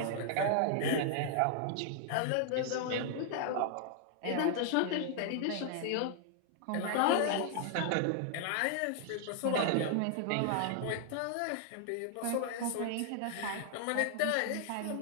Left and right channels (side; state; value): both; different; correlation 0.00